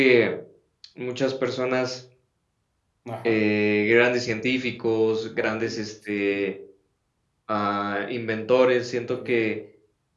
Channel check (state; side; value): identical; both; correlation 1.00